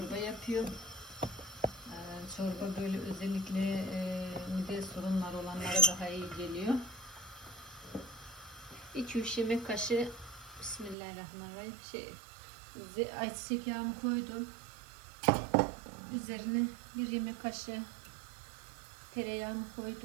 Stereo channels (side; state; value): left; drops out; at 11.0 s